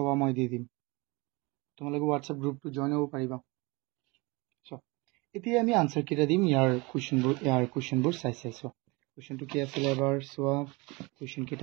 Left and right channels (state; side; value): quieter; left; 25.8 dB